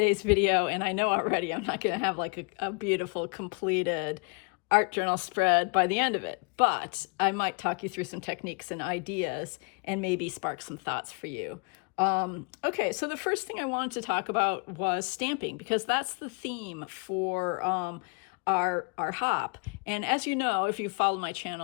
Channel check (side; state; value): right; quieter; 34.1 dB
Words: video, and I know already I'm not going to have like a beautiful completed art journal spread by the end of it, but I might talk you through some techniques and ideas and maybe spark some thoughts for you. Okay, so the first thing I wanted to talk about was stamping, because that's the theme for our hop. And as you know, if you follow my